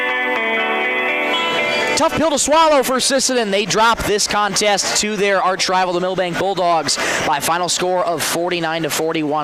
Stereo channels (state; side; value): identical; both; correlation 1.00